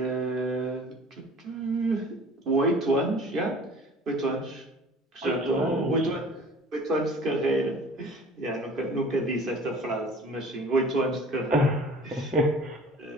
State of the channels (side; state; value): both; normal; correlation 0.47